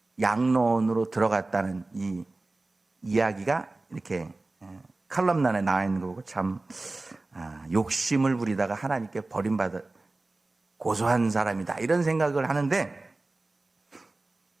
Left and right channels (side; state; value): left; quieter; 3.1 dB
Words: 양로원으로 들어갔다는 이 이야기가 이렇게 칼럼란에 나와 있는 거고 참 욕심을 부리다가 하나님께 버림받아 고소한 사람이다 이런 생각을 하는데